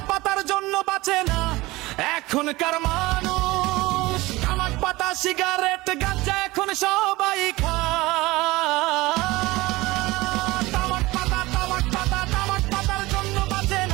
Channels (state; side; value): quieter; left; 20.4 dB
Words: পাতার জন্য বাঁচে না এখনকার মানুষ। তামাক পাতা সিগারেট গাঁজা এখন সবাই খায়। তামাক পাতা তামাক পাতা তামাক পাতার জন্য বাঁচে